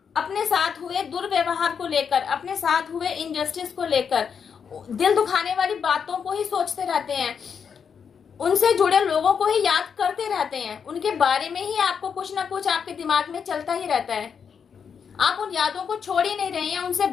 अपने साथ हुए दुर्व्यवहार को लेकर, अपने साथ हुए इनजस्टिस को लेकर, दिल दुखाने वाली बातों को ही सोचते रहते हैं, उनसे जुड़े लोगों को ही याद करते रहते हैं, उनके बारे में ही आपको कुछ ना कुछ आपके दिमाग में चलता ही रहता है, आप उन यादों को छोड़ ही नहीं रहे हैं, उनसे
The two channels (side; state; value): right; quieter; 6.8 dB